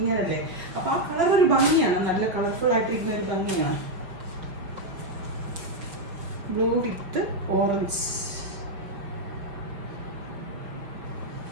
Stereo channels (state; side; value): late; left; 5.7 ms